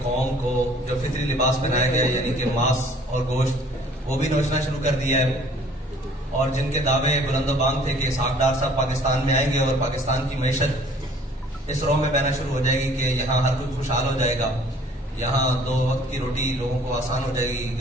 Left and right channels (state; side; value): normal; both; correlation 0.54